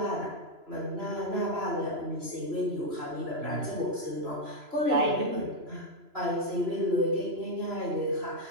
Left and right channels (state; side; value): late; left; 3.0 ms